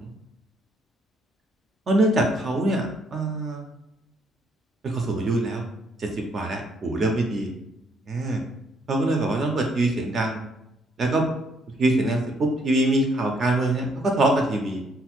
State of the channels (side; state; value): both; normal; correlation 0.69